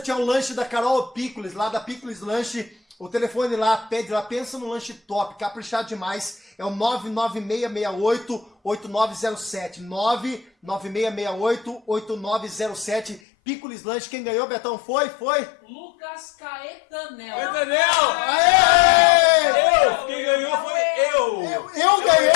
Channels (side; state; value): right; drops out; at 13.2 s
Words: um lanche da Carol Pickles, lá da Pickles Lanche. O telefone lá, pede lá, pensa no lanche top, caprichado demais. É o 99668-8907. 99668-8907. Pickles Lanche. Quem ganhou, Betão? Foi? Lucas Caetanel. Entendeu? Aê! Quem ganhou foi eu! Eu ganhei!